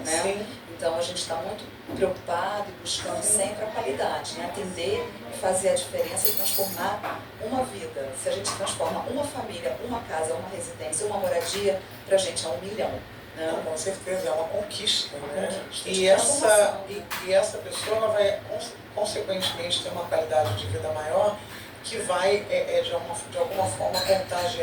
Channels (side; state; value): both; identical; correlation 1.00